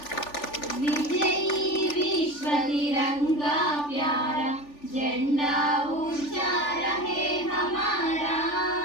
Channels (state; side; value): late; right; 3.4 ms